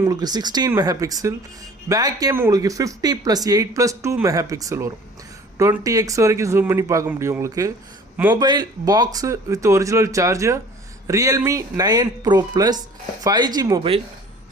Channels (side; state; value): both; normal; correlation 0.48